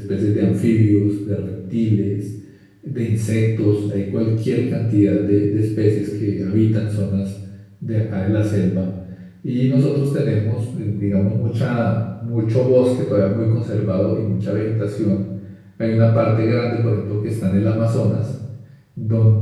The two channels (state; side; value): identical; both; correlation 1.00